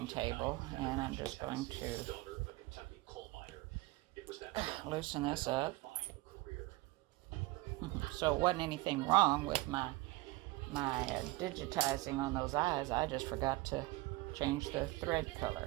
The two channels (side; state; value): left; quieter; 20.5 dB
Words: table, and I'm just going to loosen this up. So it wasn't anything wrong with my digitizing on those eyes. I just forgot to change the thread